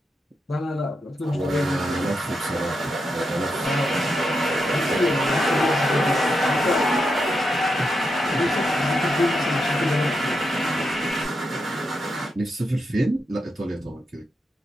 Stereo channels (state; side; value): normal; both; correlation 0.84